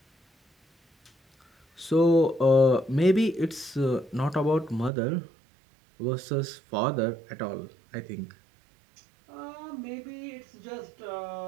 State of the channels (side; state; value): left; drops out; at 4.9 s